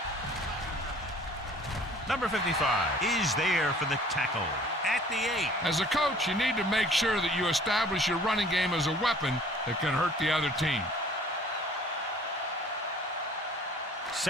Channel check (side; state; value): both; normal; correlation 0.52